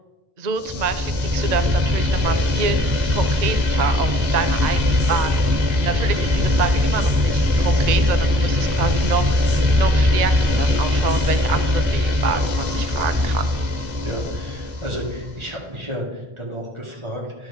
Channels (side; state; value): left; late; 1.9 ms